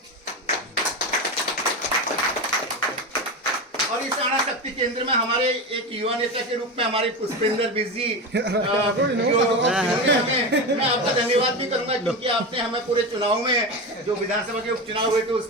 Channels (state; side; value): normal; both; correlation 0.20